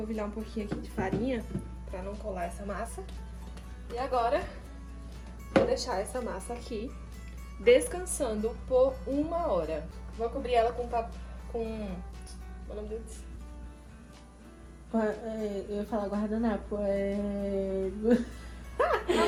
um pouquinho aqui de farinha, pra não colar essa massa. E agora, vou deixar essa massa aqui, descansando por 1 hora. Vou cobrir ela com... Qual é o nome deles? Eu ia falar guardanapo, Qual é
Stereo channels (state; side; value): identical; both; correlation 1.00